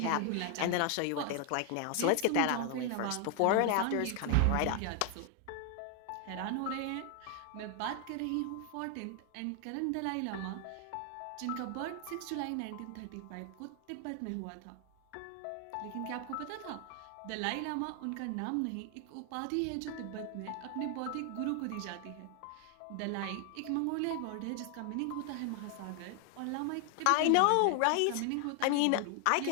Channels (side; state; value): both; different; correlation 0.00